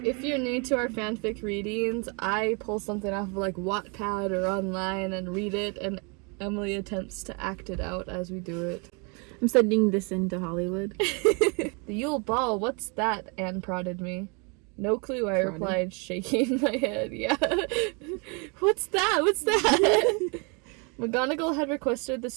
If you're new to our fanfic readings, I pull something off of like Wattpad or online and read it, and Emily attempts to act it out as we do it. I'm sending this into Hollywood. The Yule Ball, what's that? Anne prodded me. No clue, I replied, shaking my head. Yeah. What's that? What's that? McGonagall had requested the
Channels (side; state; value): left; quieter; 33.2 dB